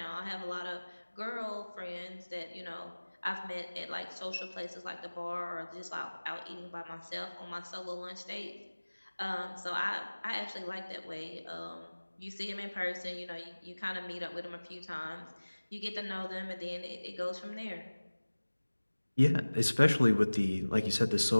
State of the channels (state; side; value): inverted; both; correlation -1.00